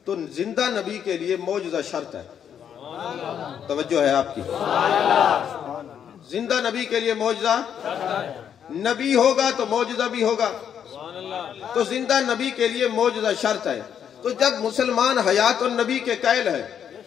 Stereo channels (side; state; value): right; quieter; 8.6 dB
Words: تو زندہ نبی کے لیے معجزہ شرط ہے۔ توجہ ہے آپ کی، زندہ نبی کے لیے معجزہ، نبی ہوگا تو معجزہ بھی ہوگا، تو زندہ نبی کے لیے معجزہ شرط ہے۔ تو جب مسلمان حیات النبی کے قائل ہے،